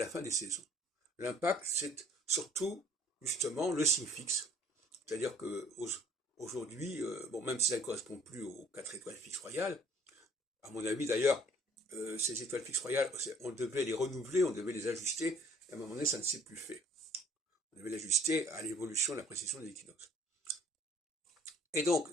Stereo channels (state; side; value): normal; both; correlation 0.56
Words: fin des saisons. L'impact, c'est surtout justement le signe fixe. C'est-à-dire que aujourd'hui, bon, même si ça ne correspond plus aux 4 étoiles fixes royales, à mon avis d'ailleurs, ces étoiles fixes royales, on devait les renouveler, on devait les ajuster, et à un moment donné, ça ne s'est plus fait. On devait l'ajuster à l'évolution de la précession des équinoxes. Et donc,